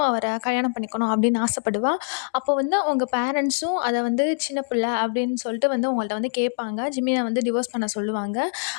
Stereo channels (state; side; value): silent; right; digital silence